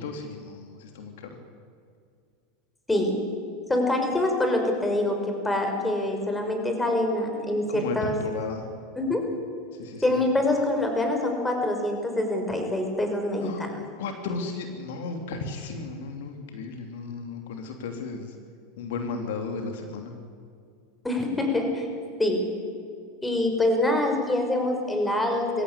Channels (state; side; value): normal; both; correlation 0.49